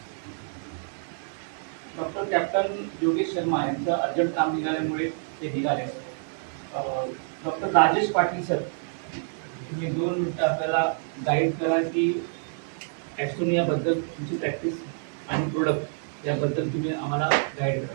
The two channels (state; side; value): silent; left; 59 dB below the other